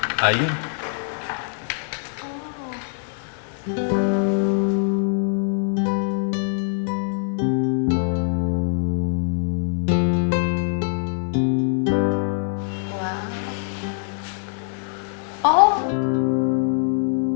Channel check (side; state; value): right; silent; 58 dB below the other